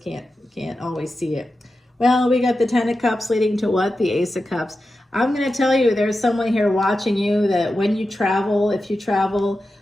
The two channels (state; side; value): normal; both; correlation 0.91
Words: can't always see it. Well, we got the 10 of Cups leading to what? The Ace of Cups. I'm going to tell you, there's someone here watching you that when you travel, if you travel